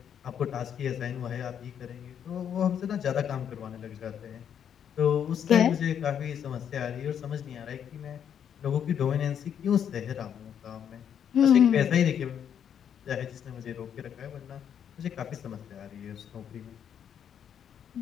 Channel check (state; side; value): quieter; right; 8.7 dB